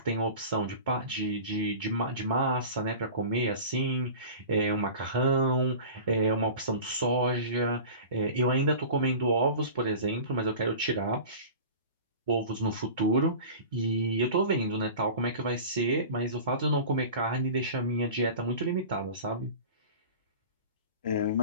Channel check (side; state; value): both; inverted; correlation -0.36